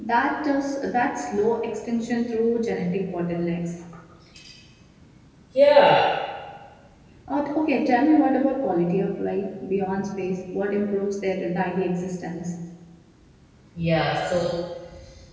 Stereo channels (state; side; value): identical; both; correlation 1.00